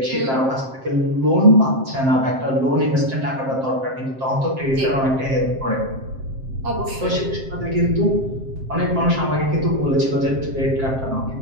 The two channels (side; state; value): left; late; 7.6 ms